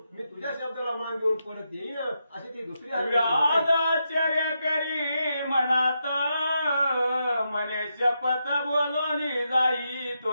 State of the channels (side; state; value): both; inverted; correlation -0.84